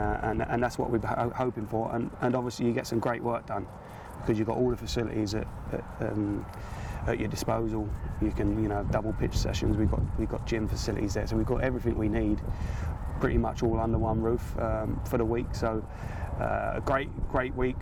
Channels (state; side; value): identical; both; correlation 1.00